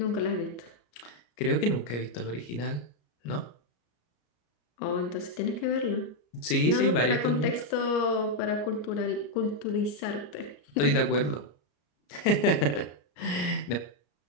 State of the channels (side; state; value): right; late; 34 ms